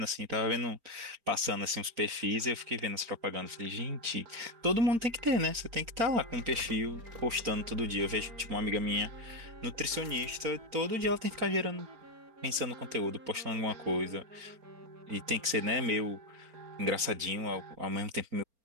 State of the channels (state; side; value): late; left; 4.3 ms